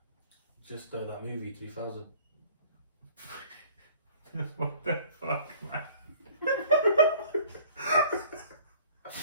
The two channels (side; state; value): both; inverted; correlation -0.51